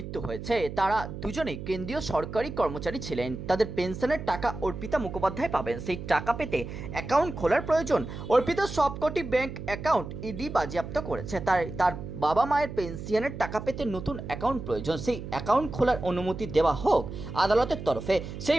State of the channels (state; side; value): noise; right; hum, 9 dB below the sound